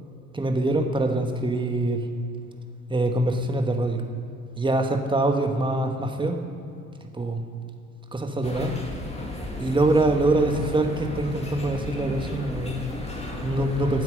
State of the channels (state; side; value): normal; both; correlation 0.67